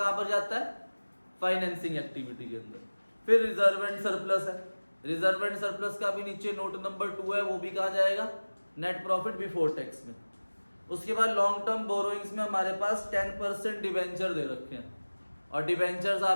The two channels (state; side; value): inverted; both; correlation -1.00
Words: पर जाता है? फाइनेंसिंग एक्टिविटी के अंदर। फिर रिजर्व एंड सरप्लस है। रिजर्व एंड सरप्लस का भी नीचे नोट नंबर 2 है, वो भी कहा जाएगा नेट प्रॉफिट बिफोर टैक्स में। उसके बाद लॉन्ग टर्म बोरोइंग्स में हमारे पास 10% डिवेंचर दे रखे हैं, और डिवेंचर्स